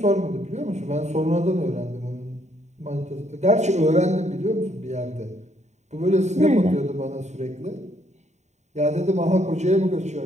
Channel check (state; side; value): late; left; 0.34 ms